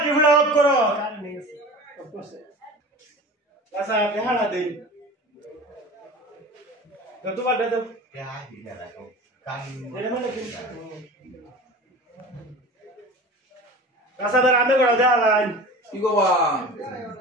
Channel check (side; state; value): both; normal; correlation 0.36